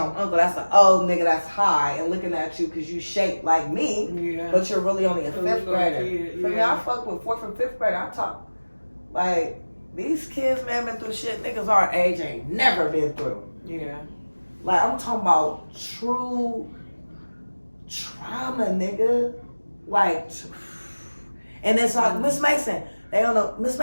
uncle. That's an old nigga that's high and looking at you because you shaped like me, but you're really only a fifth grader. For me, I fuck with fourth and fifth grader. I talk like these kids, man, been through shit niggas our age ain't never been through. Yeah. Like, I'm talking about true trauma, nigga. Like, and it's like, Miss Mason, they don't know, Miss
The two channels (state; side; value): inverted; both; correlation -1.00